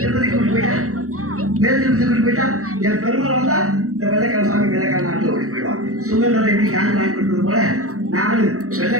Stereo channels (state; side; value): late; left; 0.64 ms